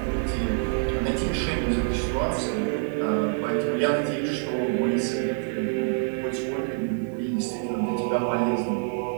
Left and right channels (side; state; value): left; silent; 61 dB below the other